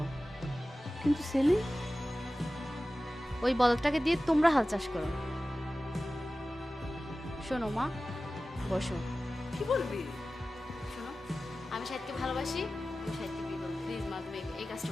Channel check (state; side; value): normal; both; correlation 0.96